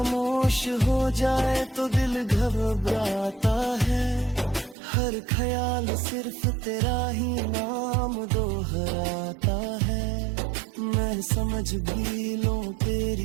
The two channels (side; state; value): left; drops out; at 4.8 s